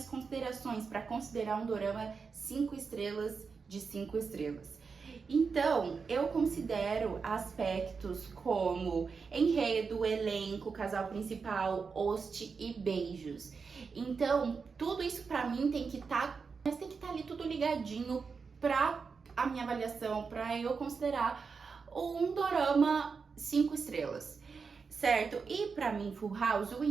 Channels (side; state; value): left; quieter; 5.2 dB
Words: considerações para considerar um dorama 5 estrelas de 5 estrelas. Então, eu considero aspectos como enredo, elenco, casal principal, host e beijos. Então, tudo isso pra mim tem que estar ali tudo ligadinho pra a minha avaliação, pra eu considerar um dorama 5 estrelas, certo? E pra mim, Full House, o